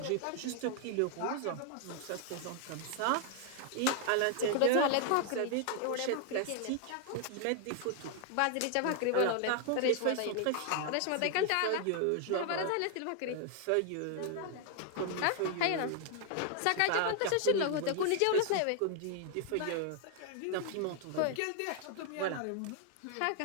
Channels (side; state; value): both; different; correlation 0.00